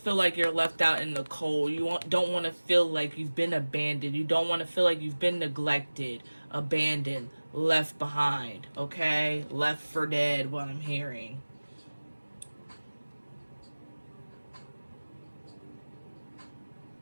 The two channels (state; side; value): inverted; both; correlation -1.00